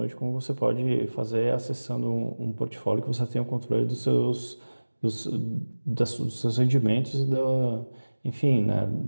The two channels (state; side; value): inverted; both; correlation -1.00